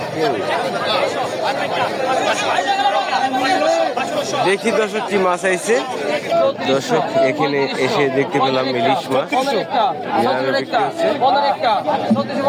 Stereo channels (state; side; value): identical; both; correlation 1.00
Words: দেখি দর্শক কি মাছ আইছে। দর্শক এখানে এসে দেখতে পেলাম ইলিশ মাছ